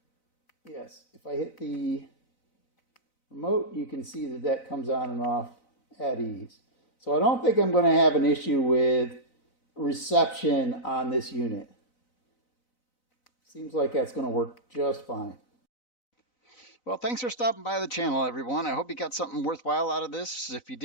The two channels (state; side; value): late; right; 4.0 ms